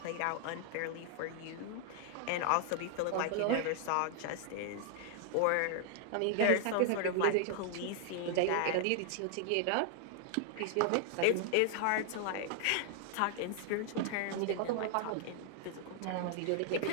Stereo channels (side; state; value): both; different; correlation 0.00